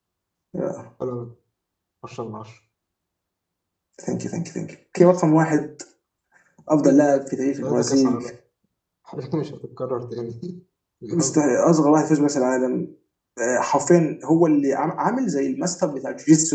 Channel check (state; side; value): identical; both; correlation 1.00